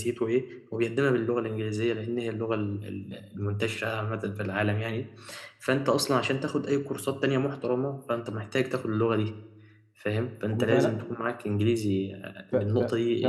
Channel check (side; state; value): both; identical; correlation 1.00